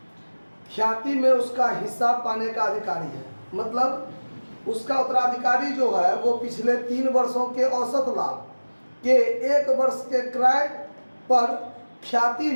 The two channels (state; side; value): inverted; both; correlation -1.00